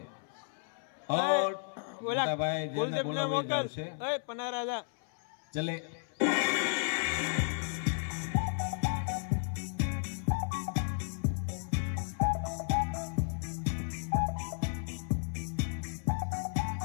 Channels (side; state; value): right; silent; 55 dB below the other